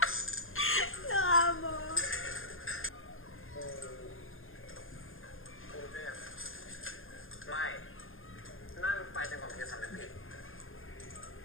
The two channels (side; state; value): right; late; 0.60 ms